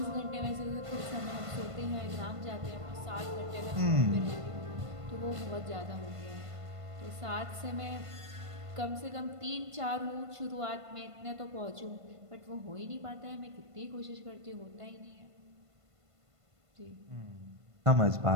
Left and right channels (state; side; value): late; left; 1.5 ms